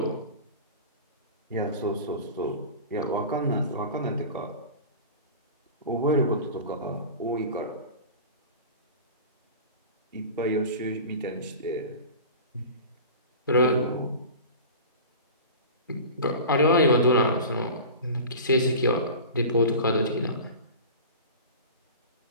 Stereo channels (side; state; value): both; inverted; correlation -0.34